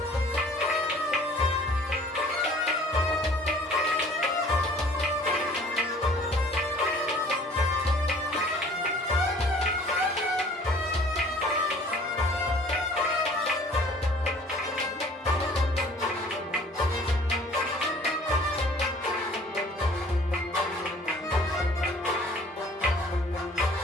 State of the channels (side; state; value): both; normal; correlation 0.52